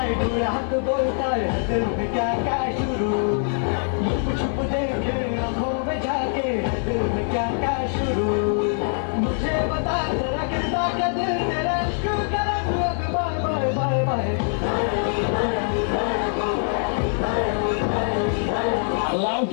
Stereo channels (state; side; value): silent; right; 63 dB below the other